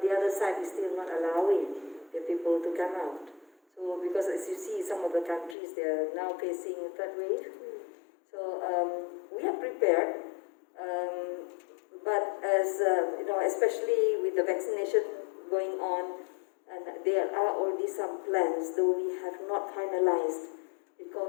other side is still not allowing the people to come out. So because as you see, some of the countries they are now facing a third wave. So we are prepared, but as especially with the vaccination going on. And there are already some plans, though we have not finalized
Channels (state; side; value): drops out; right; at 5.6 s